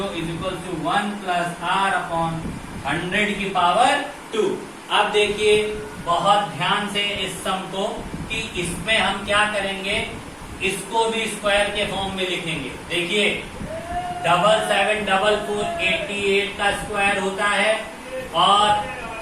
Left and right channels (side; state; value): both; identical; correlation 1.00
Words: is equal to 1 plus R upon 100 की पावर 2। अब देखिए बहुत ध्यान से इस सम को कि इसमें हम क्या करेंगे, इसको भी स्क्वायर के फॉर्म में लिखेंगे। देखिए 7744 88 का स्क्वायर होता है और